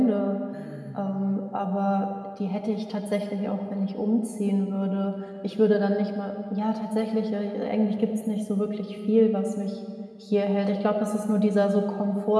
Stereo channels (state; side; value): identical; both; correlation 1.00